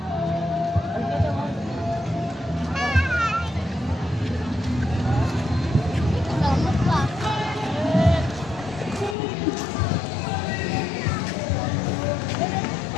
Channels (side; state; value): right; drops out; at 9.2 s